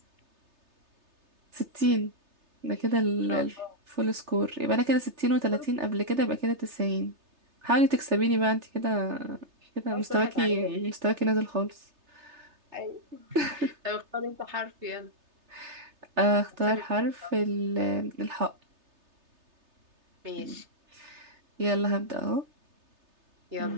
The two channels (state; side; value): late; left; 3.3 ms